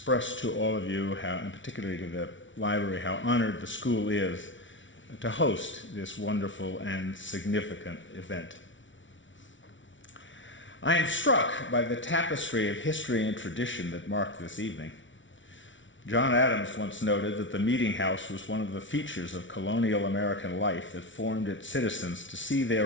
to all of you, how, and particularly to the library, how honored the school is to host this wonderful and significant event. I am struck by the tapestry of history and tradition that mark this evening. John Adams once noted that the meeting house was one of the features of colonial American life that formed its citizens to see their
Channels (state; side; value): late; right; 0.56 ms